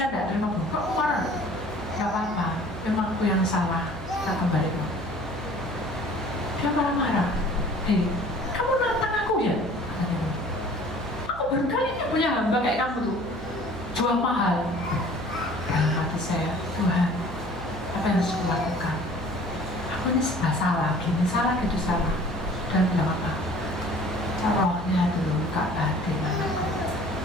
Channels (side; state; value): right; noise; hum, 13 dB below the sound